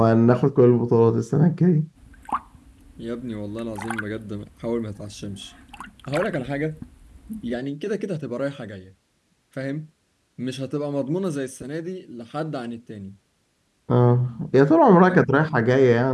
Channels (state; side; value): identical; both; correlation 1.00